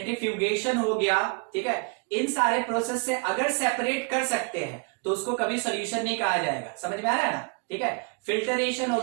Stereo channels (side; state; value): left; quieter; 33.5 dB